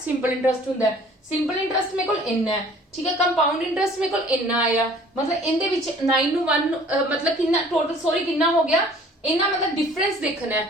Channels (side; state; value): both; normal; correlation 0.52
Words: ਇੰਟਰਸਟ ਹੁੰਦਾ ਹੈ। ਸਿੰਪਲ ਇੰਟਰਸਟ ਮੇਰੇ ਕੋਲ ਇੰਨਾ ਹੈ, ਠੀਕ ਹੈ। ਕੰਪਾਊਂਡ ਇੰਟਰਸਟ ਮੇਰੇ ਕੋਲ ਇੰਨਾ ਆਇਆ ਮਤਲਬ ਇਹਦੇ ਵਿੱਚ 9 ਨੂੰ 1 ਮਤਲਬ ਕਿੰਨਾ ਟੋਟਲ ਸੌਰੀ ਕਿੰਨਾ ਹੋ ਗਿਆ ਇਹਨਾਂ ਮਤਲਬ ਡਿਫਰੈਂਸ ਦੇਖਣਾ ਹੈ।